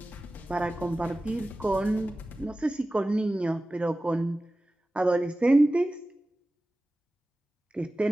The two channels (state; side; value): normal; both; correlation 0.96